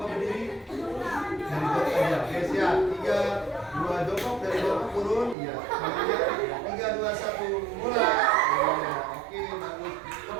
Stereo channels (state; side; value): drops out; left; at 5.4 s